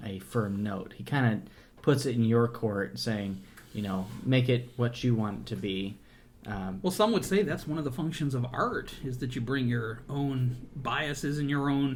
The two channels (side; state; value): both; identical; correlation 1.00